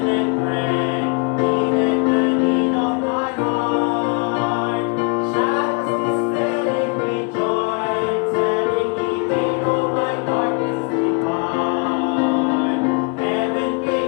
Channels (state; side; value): quieter; right; 34.8 dB